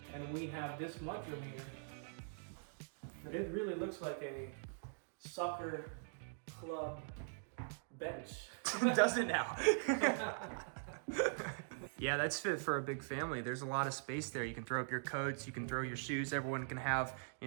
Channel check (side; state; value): left; silent; digital silence